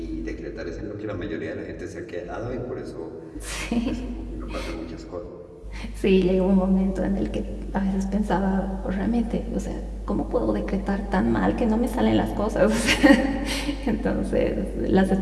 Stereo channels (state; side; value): identical; both; correlation 1.00